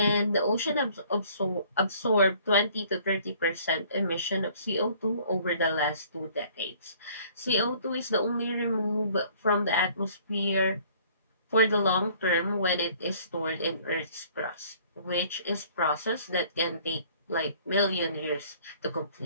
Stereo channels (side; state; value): both; inverted; correlation -0.56